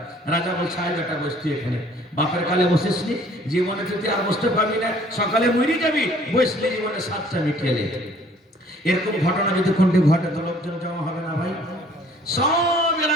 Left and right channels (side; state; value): both; normal; correlation 0.56